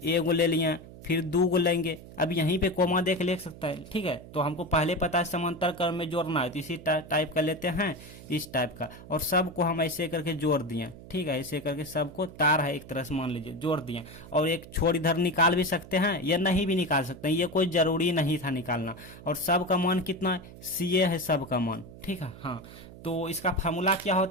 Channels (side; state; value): right; noise; hum, 17 dB below the sound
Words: एक गो ले लिए फिर 2 को लेंगे, अब यहीं पे कोमा देख ले सकता है, ठीक है। तो हमको पहले पता है समांतर क्रम में जोड़ना है, तो इसी टाइप का लेते हैं, इस टाइप का, और सबको हम ऐसे करके जोड़ दिए, ठीक है। ऐसे करके सबको तार है एक तरह से मान लीजिए, जोड़ दिए। और एक छोर इधर निकाल भी सकते हैं या नहीं भी निकाल सकते हैं, ये कोई जरूरी नहीं था निकालना। और सब का मान कितना है, CA है सब का मान, ठीक है। हाँ, तो इसका फार्मूला क्या